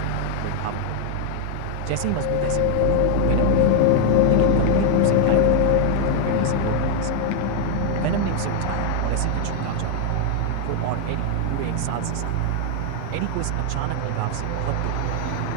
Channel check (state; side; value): different; both; correlation 0.00